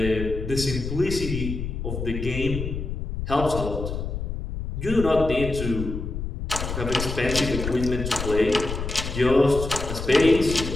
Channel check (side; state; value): left; noise; rumble, 5 dB below the sound